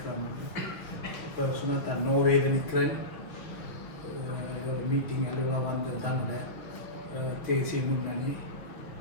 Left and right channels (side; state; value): right; late; 5.5 ms